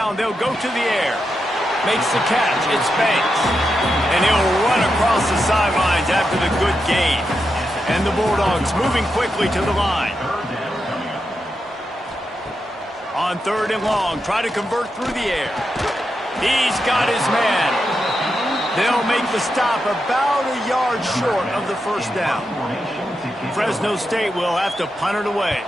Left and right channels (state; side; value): normal; both; correlation 0.86